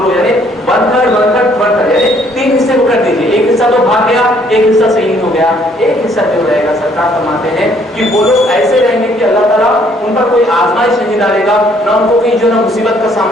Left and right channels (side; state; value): both; normal; correlation 0.64